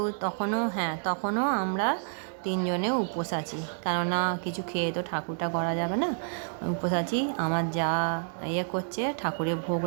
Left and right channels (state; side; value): silent; left; 59 dB below the other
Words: তখনও আমরা তিনজনে উপোস আছি, কেননা কিছু খেয়ে তো ঠাকুরটা গড়া যাবে না। উপোস আছি। আমার যা করছে, ঠাকুরের ভোগ